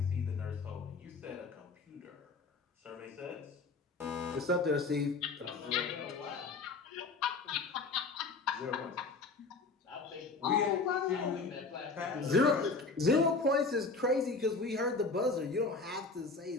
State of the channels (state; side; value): quieter; right; 4.0 dB